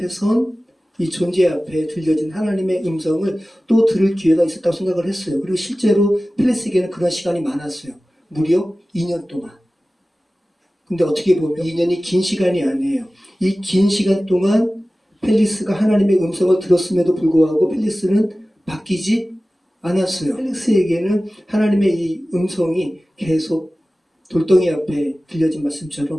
선 이 존재 앞에 들려진 하나님의 음성을 또 들을 기회가 있었다고 생각을 했어요. 그리고 실제로 펠릭스에게는 그런 시간이 많았어요. 무려 2년 동안. 근데 어떻게 보면 2년이 긴 시간이 아니에요. 이 긴 시간 동안 펠릭스가 하나님의 음성을 들었음에도 불구하고 펠릭스는 바뀌지 않았어요. 펠릭스에게는 하나님의 이 음성이 계속 돌덩이 앞에 들려진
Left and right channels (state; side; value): normal; both; correlation 0.96